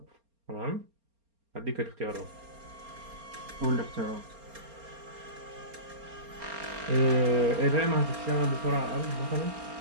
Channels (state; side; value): late; left; 4.3 ms